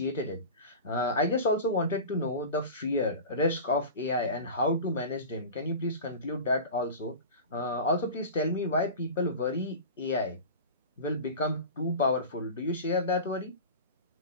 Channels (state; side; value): inverted; both; correlation -0.31